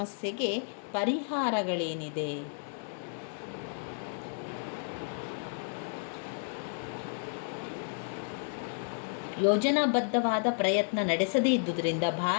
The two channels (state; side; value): silent; right; digital silence